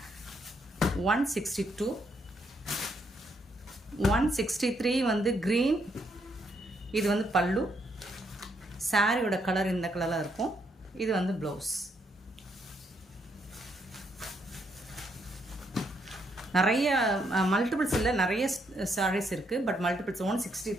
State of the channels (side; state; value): both; normal; correlation 0.75